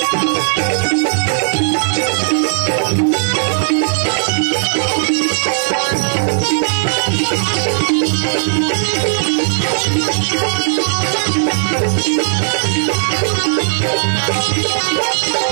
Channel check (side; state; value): left; silent; digital silence